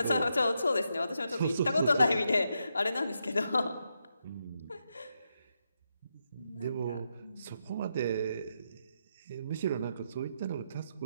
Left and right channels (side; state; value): both; inverted; correlation -0.83